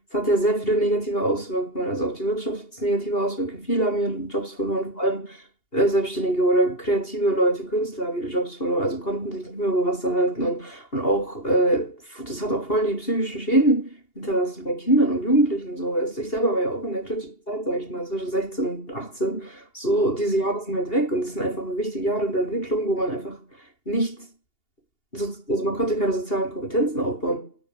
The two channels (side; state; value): right; late; 2.8 ms